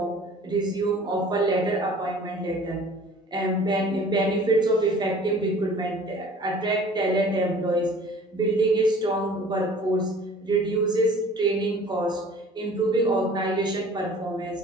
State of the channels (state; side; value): normal; both; correlation 0.48